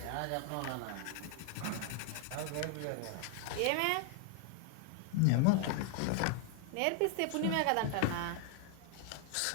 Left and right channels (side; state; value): both; different; correlation 0.00